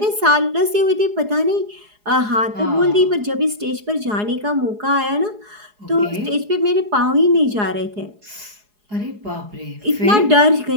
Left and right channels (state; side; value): late; left; 4.8 ms